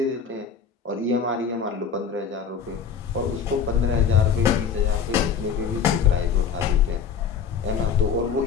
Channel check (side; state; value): right; quieter; 6.8 dB